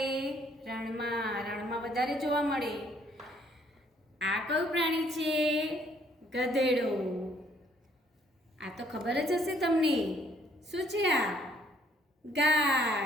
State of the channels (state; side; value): normal; both; correlation 0.65